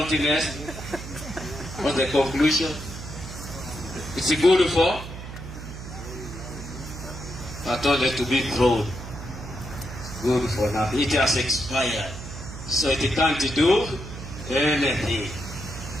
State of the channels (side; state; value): right; noise; hum, 11 dB below the sound